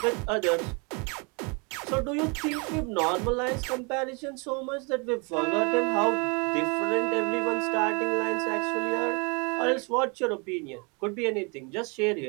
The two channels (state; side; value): quieter; left; 32.5 dB